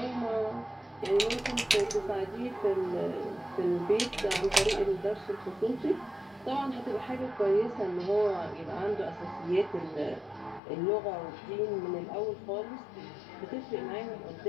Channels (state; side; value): drops out; right; at 10.6 s